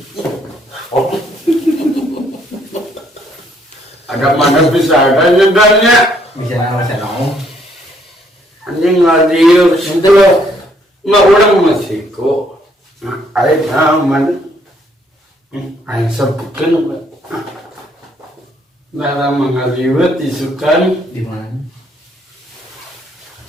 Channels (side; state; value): both; normal; correlation 0.68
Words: Ada mana bisa ada nyedanya. Bisa nama saya nong. Anjing ngadiu situ loh. Nggak orang masih kok. Ayo aman. Ayo sebutkan. Dalam mengaliwat disukan. Di mana?